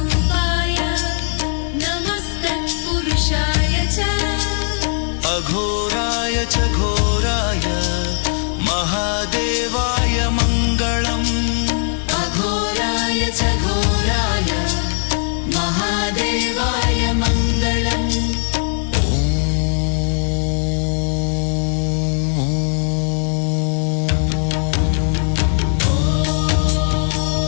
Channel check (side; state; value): right; silent; 67 dB below the other